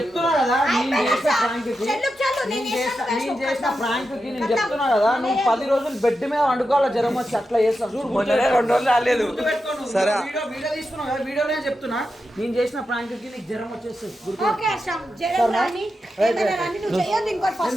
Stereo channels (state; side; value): normal; both; correlation 0.89